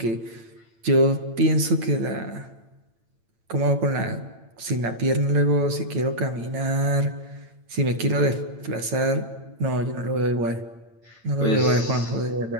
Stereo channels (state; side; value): late; left; 8.9 ms